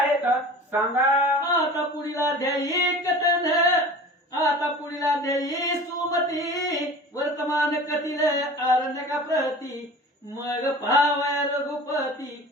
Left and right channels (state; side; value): normal; both; correlation 0.39